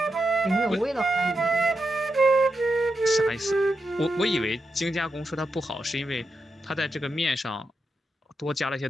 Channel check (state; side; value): normal; both; correlation 0.86